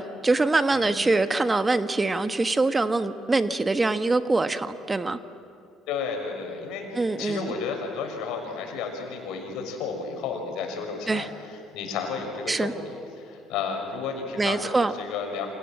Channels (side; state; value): both; normal; correlation 0.83